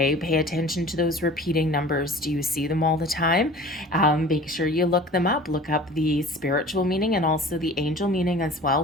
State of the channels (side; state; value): both; normal; correlation 0.43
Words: pay attention to those repeating numbers. Do you see them all the time? Make sure you look them up. Look up the spiritual meaning and also the angel meaning as well